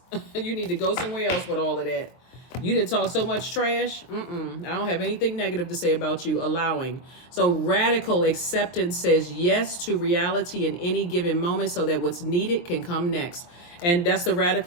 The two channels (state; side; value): late; right; 23 ms